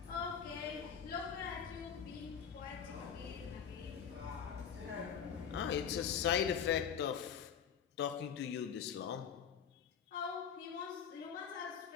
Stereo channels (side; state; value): right; quieter; 7.7 dB